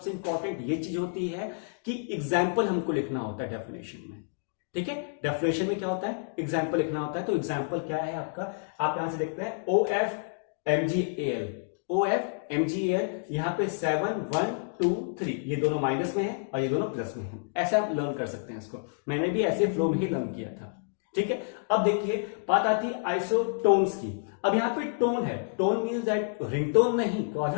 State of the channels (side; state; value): right; silent; digital silence